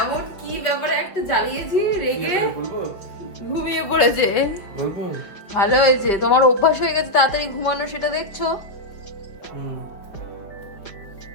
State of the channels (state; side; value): late; right; 5.1 ms